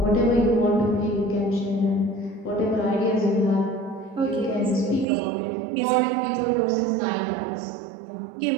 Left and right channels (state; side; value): drops out; left; at 5.1 s